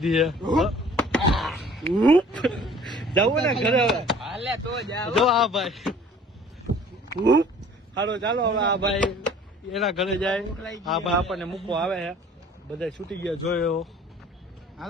છે. જવું ને ઘરે હવે જો આ ભાઈ. હાલો ચાલો હવે આ ભાઈ એના ઘરે જાય. આ ભાઈ આપણને મૂકવા આવે છે. બધા છૂટી ગયા જોયો.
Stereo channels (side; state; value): both; normal; correlation 0.50